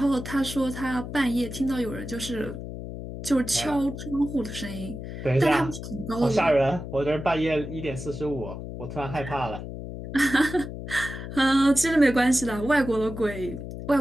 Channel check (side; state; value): left; noise; hum, 9 dB below the sound